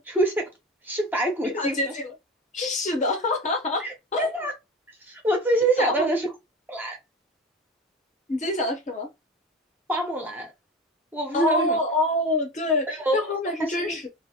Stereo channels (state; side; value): normal; both; correlation 0.30